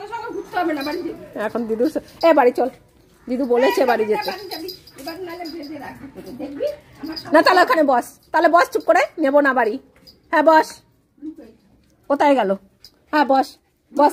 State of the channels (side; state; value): both; identical; correlation 1.00